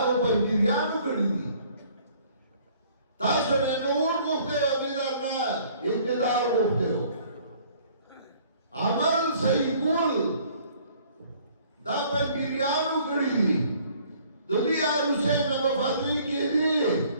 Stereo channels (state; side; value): inverted; both; correlation -0.58